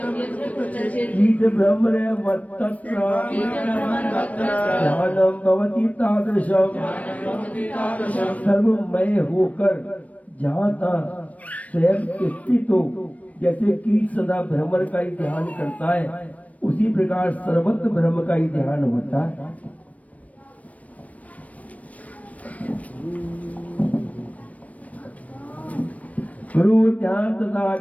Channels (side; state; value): right; late; 0.068 ms